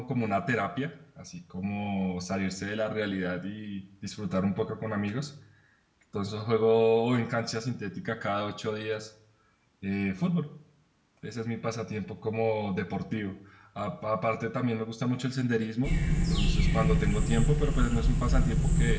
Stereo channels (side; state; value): both; identical; correlation 1.00